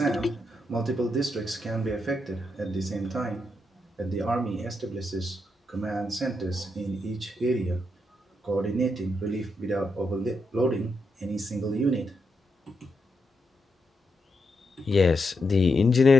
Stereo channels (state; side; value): normal; both; correlation 0.83